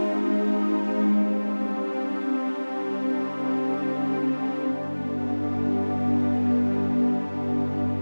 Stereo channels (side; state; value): both; inverted; correlation -1.00